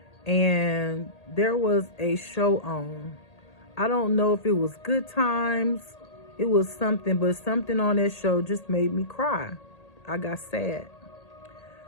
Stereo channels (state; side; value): late; right; 1.8 ms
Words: and there was a show on. I don't know if it was Good Times, it was something, but something on that show just made me cry. I got sad.